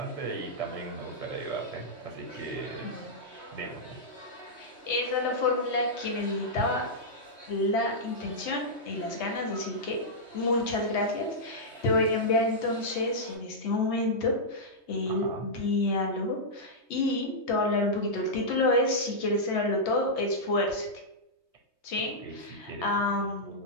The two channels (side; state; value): right; late; 3.2 ms